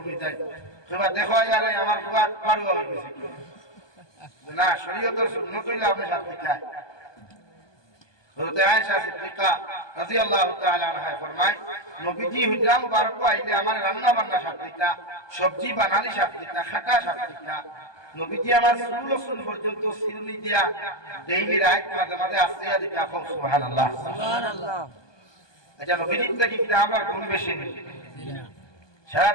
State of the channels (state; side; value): late; right; 1.2 ms